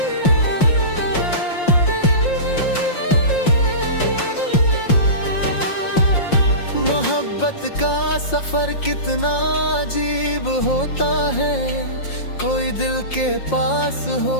मोहब्बत का सफर कितना अजीब होता है, कोई दिल के पास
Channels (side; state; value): right; late; 5.6 ms